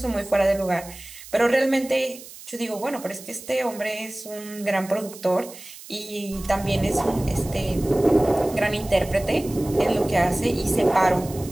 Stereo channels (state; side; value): noise; right; hiss, 16 dB below the sound